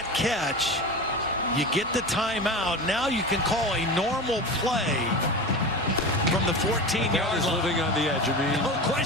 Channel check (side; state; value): both; normal; correlation 0.28